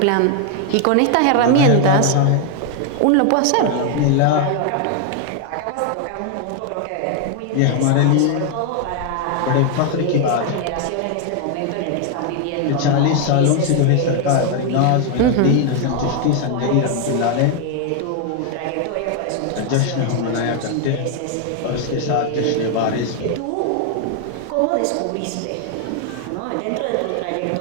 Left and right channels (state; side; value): different; both; correlation 0.00